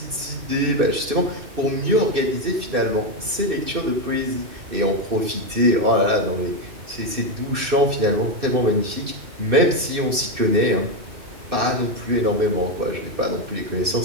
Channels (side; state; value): left; late; 2.6 ms